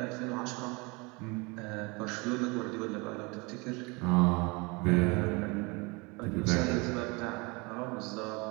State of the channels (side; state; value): left; quieter; 27.7 dB